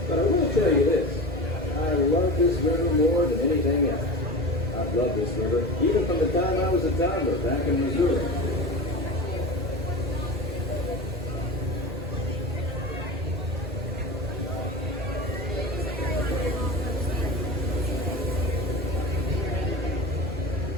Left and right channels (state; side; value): normal; both; correlation 0.29